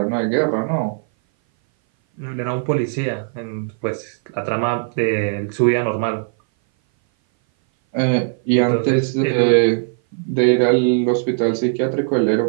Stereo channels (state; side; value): silent; left; 59 dB below the other